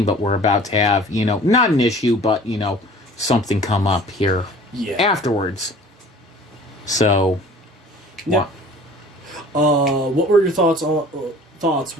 but we're about to have, not an issue, but, something come up here afterwards. So, yeah. What were your thoughts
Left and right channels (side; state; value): both; normal; correlation 0.47